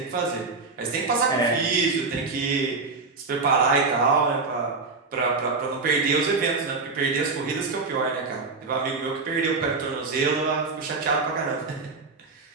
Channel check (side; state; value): left; quieter; 4.1 dB